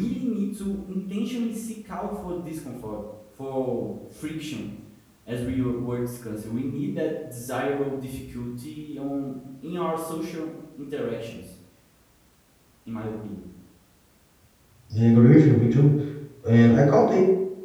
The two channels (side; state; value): both; identical; correlation 1.00